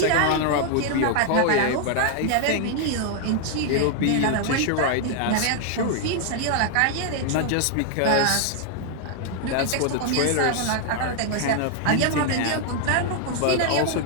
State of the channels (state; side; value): different; both; correlation 0.00